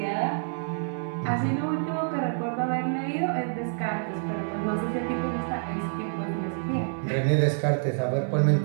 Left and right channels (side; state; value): left; silent; digital silence